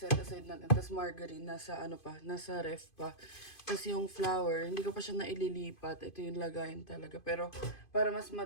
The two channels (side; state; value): right; late; 2.5 ms